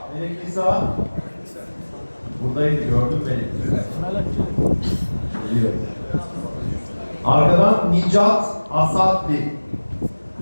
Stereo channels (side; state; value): both; inverted; correlation -1.00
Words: Melek Nisa. Buradaydı, gördün beni. Geliyor. Arkadan Nicat Asatli.